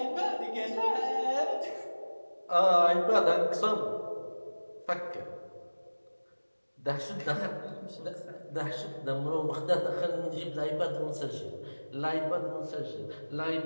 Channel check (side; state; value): both; inverted; correlation -1.00